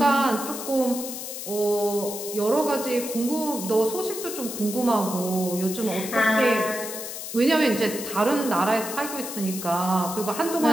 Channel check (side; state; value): left; noise; hiss, 8 dB below the sound